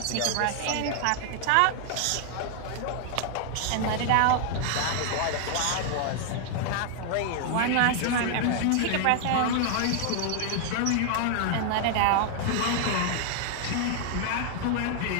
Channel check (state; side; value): different; both; correlation 0.00